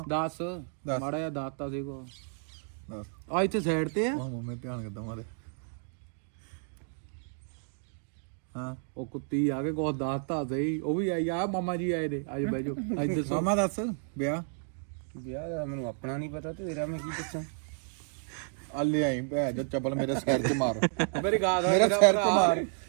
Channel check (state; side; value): silent; left; 57 dB below the other